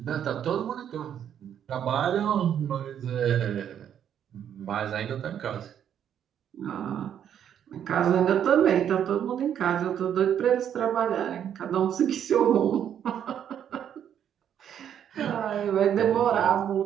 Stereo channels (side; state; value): left; quieter; 9.3 dB